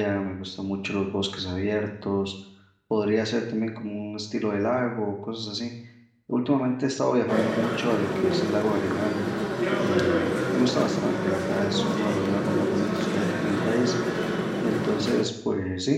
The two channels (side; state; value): both; identical; correlation 1.00